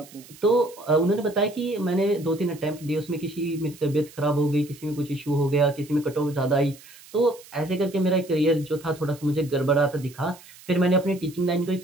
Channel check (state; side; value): noise; right; hiss, 21 dB below the sound